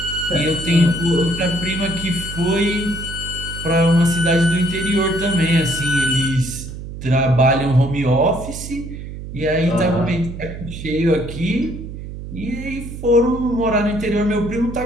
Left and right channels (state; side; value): noise; right; hum, 10 dB below the sound